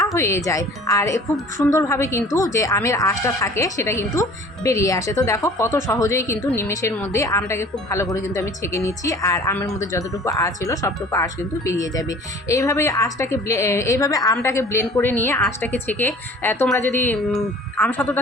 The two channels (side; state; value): both; normal; correlation 0.47